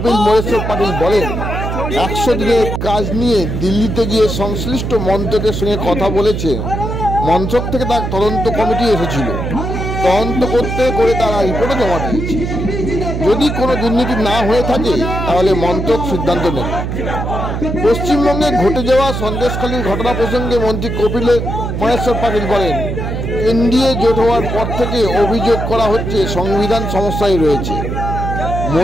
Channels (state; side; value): noise; right; hum, 3 dB below the sound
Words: মোরেশ্বর পাটিল বলেন, 100 দিনের কাজ নিয়ে দিল্লিতে গিয়ে সংশ্লিষ্ট মন্ত্রকের সঙ্গে কথা বলেছে। মন্ত্রক থেকে তার তদন্ত কমিটি এসেছিল, তদন্ত করে তারা রিপোর্টও জমা দিয়েছে। যদি কোনো দুর্নীতি না হয়ে থাকে তাহলে মন্ত্রক সিদ্ধান্ত নেবে। পশ্চিমবঙ্গে ঘটে যাওয়া সন্দেশখালীর ঘটনা প্রসঙ্গে মন্ত্রী কপিল মোরেশ্বর পাটিল বলেন, এনডিএ জোট হওয়ার পর থেকে অভিযোগ করা হচ্ছে সংবিধান সমস্যায় রয়েছে।